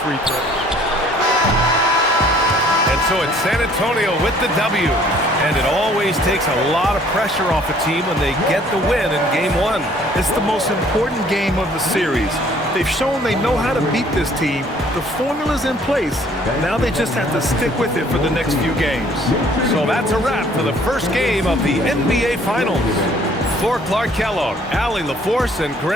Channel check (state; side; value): normal; both; correlation 0.58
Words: free throws. And so it's San Antonio with the W. And it always takes a lot of pressure off a team when they get the win in Game 1. It's the most important game of the series. They've shown they know how to beat this team. The formula's in place. Now they just have to stick with it for the next few games. So that's a wrap for the first game of the NBA Finals. For Clark Kellogg, Allie LaForce, and